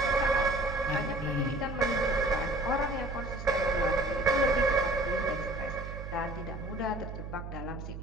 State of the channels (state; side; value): noise; right; hum, 9 dB below the sound